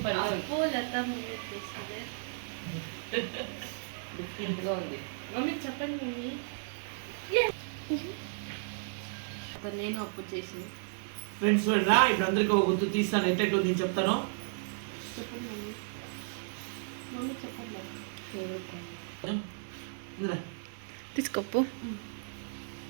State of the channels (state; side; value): silent; left; 55 dB below the other